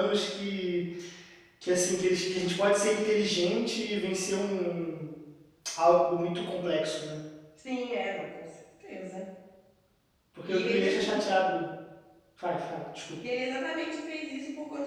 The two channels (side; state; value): both; identical; correlation 1.00